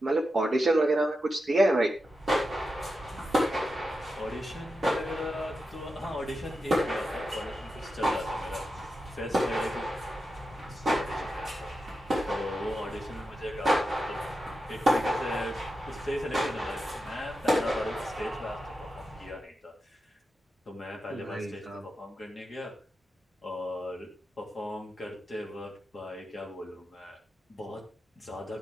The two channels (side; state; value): both; normal; correlation 0.89